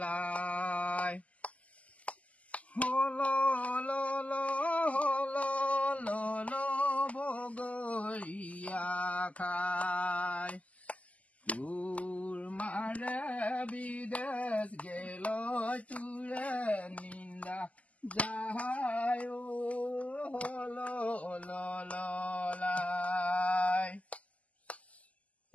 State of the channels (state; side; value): late; right; 0.070 ms